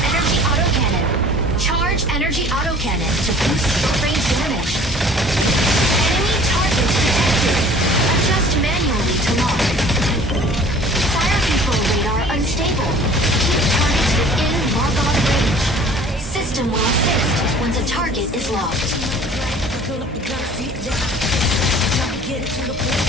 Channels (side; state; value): both; normal; correlation 0.48